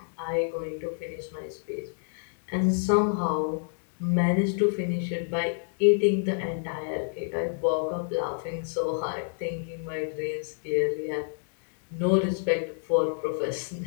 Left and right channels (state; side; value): silent; right; digital silence